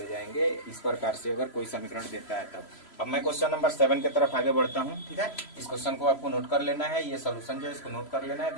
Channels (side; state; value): right; late; 3.0 ms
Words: जाएंगे, इस प्रकार से अगर कोई समीकरण देता है तब। अब मैं क्वेश्चन नंबर 7 की तरफ आगे बढ़ता हूँ। ठीक है, इस क्वेश्चन को आपको नोट कर लेना है, ये सोल्यूशन जो है इसको नोट कर लेना है,